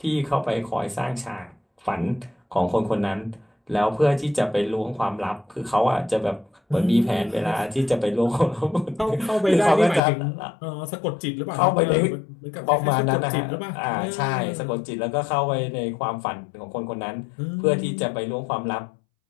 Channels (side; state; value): right; drops out; at 10.0 s